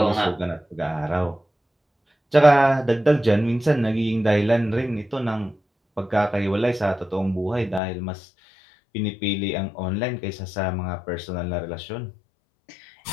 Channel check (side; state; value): right; drops out; at 7.8 s